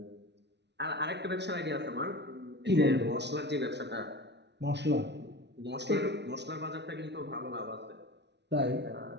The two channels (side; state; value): left; late; 0.50 ms